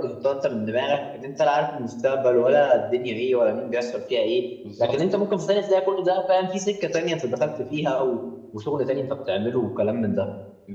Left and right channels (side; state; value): both; identical; correlation 1.00